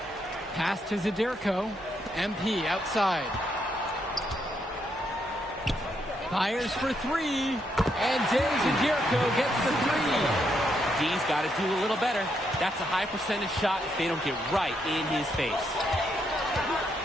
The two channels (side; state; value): both; normal; correlation 0.77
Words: Pass to Zadirko. MP outside. Fires for 3. And Day Zadirko gets the 3. D's got to do a little better. That's a high percentage shot if they don't get right in his face.